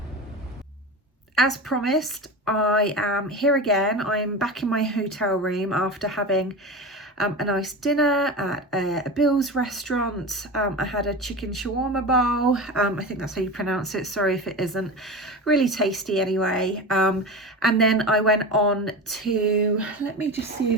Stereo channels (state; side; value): normal; both; correlation 0.26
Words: As promised, I am here again. I'm back in my hotel room after having a nice dinner at a Bill's restaurant. I had a chicken shawarma bowl. I think that's how you pronounce it. Sorry if it isn't. Really tasty anyway. And then I went on to, let me just see